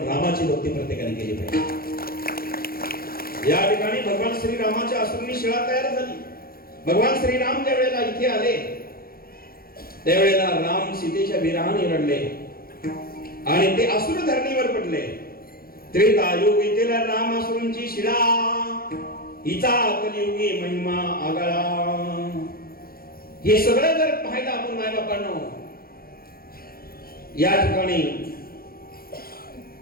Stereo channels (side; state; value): right; late; 0.43 ms